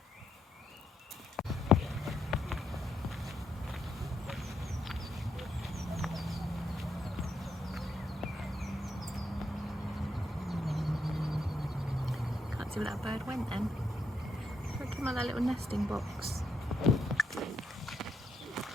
can't see where that bird went then. It came out of that little nesting box.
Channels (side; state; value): both; normal; correlation 0.78